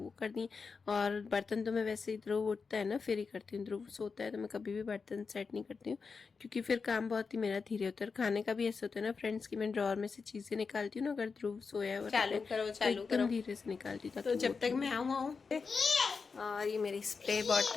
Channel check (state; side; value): quieter; right; 5.0 dB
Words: कर दिए। और बर्तन तो मैं वैसे ही ध्रुव उठता है ना फिर ही करती हूँ, ध्रुव सोता है तो मैं कभी भी बर्तन सेट नहीं करती हूँ, क्योंकि फिर काम बहुत ही मेरा धीरे होता है। खाने का भी ऐसा होता है ना फ्रेंड्स की मैं ड्रॉर में से चीज़ें निकालती हूँ ना, अगर ध्रुव सोया हुआ रहता है तो एकदम धीरे से निकालती हूँ, तो जब तक मैं आऊँ। और ये मेरी स्प्रे